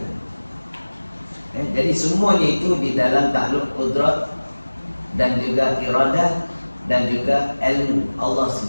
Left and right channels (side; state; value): both; inverted; correlation -1.00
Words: Jadi semuanya itu di dalam takluk kudrat dan juga iradah dan juga ilmu Allah